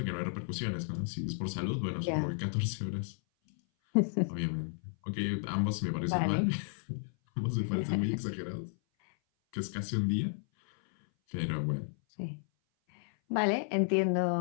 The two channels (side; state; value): right; silent; 56 dB below the other